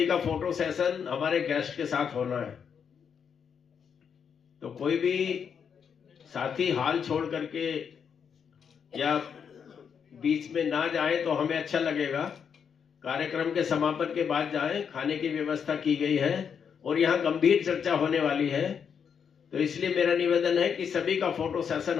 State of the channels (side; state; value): right; quieter; 7.1 dB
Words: का फोटो सेशन हमारे गेस्ट के साथ होना है, तो कोई भी साथी हाल छोड़ करके या बीच में ना जाए तो हमें अच्छा लगेगा। कार्यक्रम के समापन के बाद जाएं। खाने की व्यवस्था की गई है और यहाँ गंभीर चर्चा होने वाली है, तो इसलिए मेरा निवेदन है कि सभी का फोटो सेशन